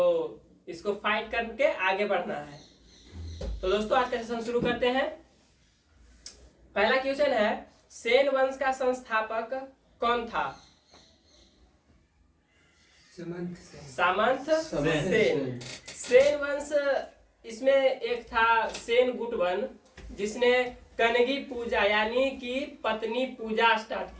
इसको फाइट करके आगे बढ़ना है। तो दोस्तों, आज का सेशन शुरू करते हैं। पहला क्वेश्चन है, सेन वंश का संस्थापक कौन था? सामंत सेन। सेन वंश, इसमें एक था सेन गुटवन, जिसने कनगी पूजा यानी कि पत्नी पूजा स्टार्ट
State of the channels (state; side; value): identical; both; correlation 1.00